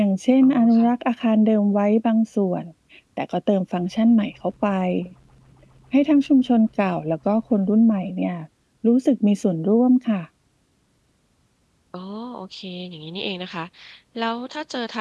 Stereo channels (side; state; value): both; identical; correlation 1.00